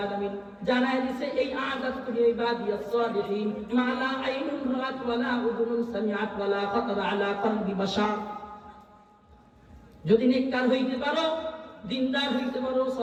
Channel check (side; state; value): both; identical; correlation 1.00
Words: আলামিন জানায় দিয়েছে এই আযাতুল ইবাদিয়াস সালিহিন মা লা আইনুন রাআত ওয়া লা উযুনুন সামিআত ওয়া লা খাতারা আলা কলবি বাশার যদি নেককার হইতে পারো দিনদার হইতে পারো